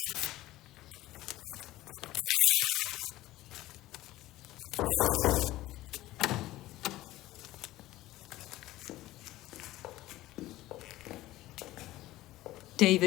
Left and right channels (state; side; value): quieter; right; 16.5 dB